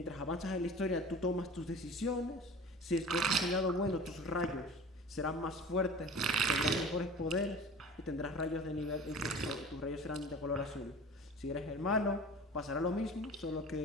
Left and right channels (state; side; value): normal; both; correlation 0.39